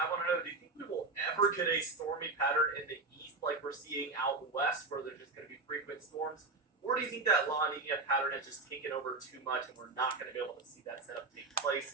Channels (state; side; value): quieter; left; 3.5 dB